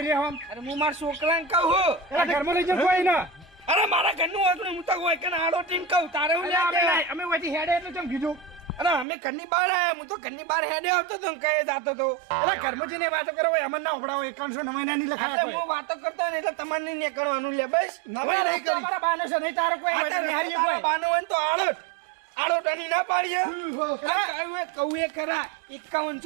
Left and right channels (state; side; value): drops out; left; at 9.1 s